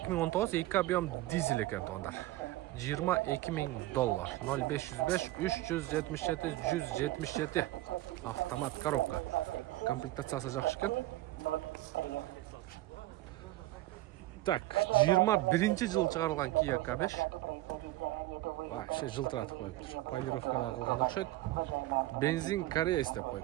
2 объем дизель экен туугандар. $22.000. 0505 377 177 автомат коробка. Комплектациясы жакшы экен. Так, 21-жылы чыгарылган Kia K5. Вообще жылтыратып коюптур. Полировкада кылган окшойт. Бензин Корея деп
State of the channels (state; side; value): quieter; left; 17.1 dB